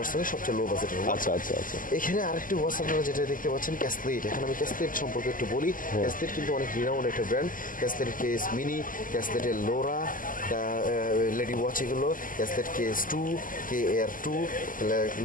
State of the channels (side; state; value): right; late; 0.40 ms